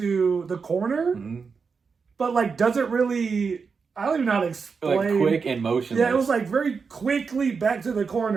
the corner, but like doesn't really. I don't even know how to explain. Like quick and motionless. Yeah, it was like very quickly back to the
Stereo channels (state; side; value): quieter; left; 5.3 dB